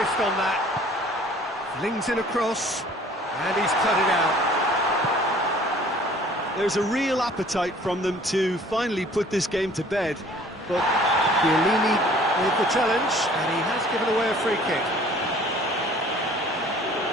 on that. Flings in across, and he's cut it out. There's a real appetite from them to finally put this game to bed, but Chiellini with the challenge, and he has given away a free kick.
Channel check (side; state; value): both; normal; correlation 0.52